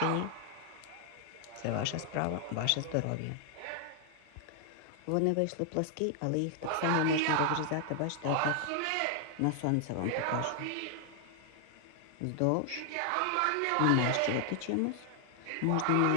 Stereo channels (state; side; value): different; both; correlation 0.00